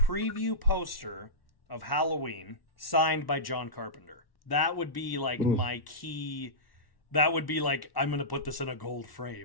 poster of Halloween signed by John Carpenter. That would be, like, my key. That would be like, I'm going to put this in a gold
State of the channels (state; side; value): late; right; 1.1 ms